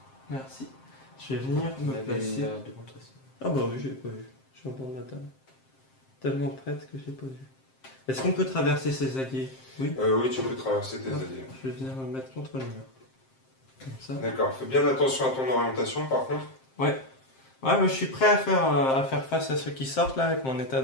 Merci. Je vais venir me placer. Ah bah oui, je l'ai pas vu. Je suis en bord de la table. Tellement prête que j'ai pas vu. Est-ce qu'on peut traverser ces alliés? Oui. Oui, tu peux traverser tes alliés. Je vais venir me mettre contre le mur. Comme ça. D'accord. Fais bien attention à ton orientation par contre. Ouais. Ouais, mais je suis prêt à faire face à ceux qui sortent là avec mon état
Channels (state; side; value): late; right; 7.6 ms